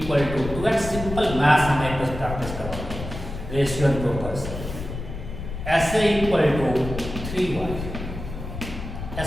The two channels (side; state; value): left; noise; rumble, 8 dB below the sound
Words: to 2x. Simple maths हमें कुछ प्रैक्टिस करवाओगे, ratio and proportions. sa equal to 3y,